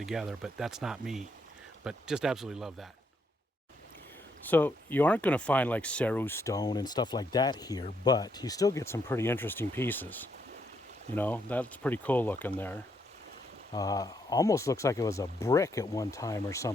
but that's not me. But just absolutely love that. So you aren't going to find like Ceru stone and stuff like that here, but you still get some pretty interesting pieces. That's pretty cool looking there. Almost looks like it was a brick at one time or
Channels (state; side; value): normal; both; correlation 0.76